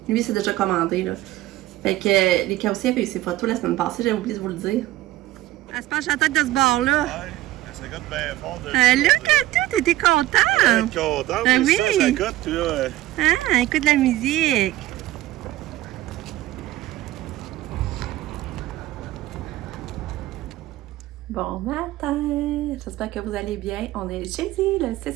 Lui, c'est déjà commandé, là. Fait que les cas aussi avaient eu ses photos la semaine passée, j'avais oublié de vous le dire. Elle se penche la tête de ce bord-là. Ouais, ça goûte bien fort de là, Katou, t'étais contente? content, oui. Ça goûte, puis là... Ah, écoute la musique. Bon matin, j'espère que vous allez bien. On est jeudi, le 6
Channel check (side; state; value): left; quieter; 15.7 dB